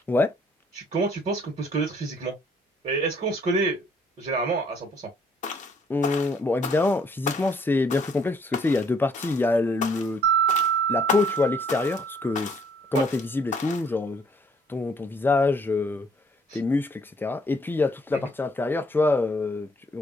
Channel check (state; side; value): normal; both; correlation 0.64